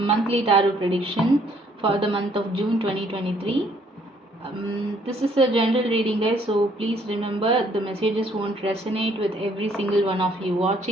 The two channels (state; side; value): normal; both; correlation 0.64